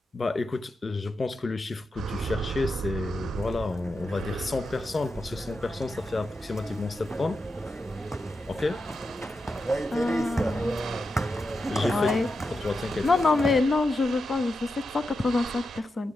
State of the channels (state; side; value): normal; both; correlation 0.88